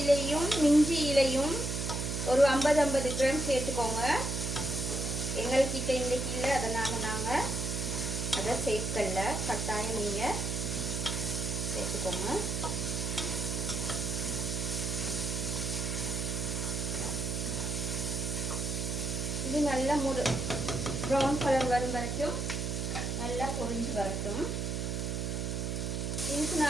இலையும் மிஞ்சி இலையும் ஒரு 50 கிராம் சேர்த்துக்கோங்க. எங்கள்கிட்ட இன்றைக்கி இல்லை, அதனால் நாங்கள் அதை சேர்க்கல. கட்டாயம் நீங்கள் சேர்த்துக்கோங்க. இது நல்லா ப்ரௌன் கலர் வரும் வரைக்கும் நல்லா பொரிஞ்சு வரட்டும். இதுக்கு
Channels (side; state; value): right; noise; hum, 2 dB below the sound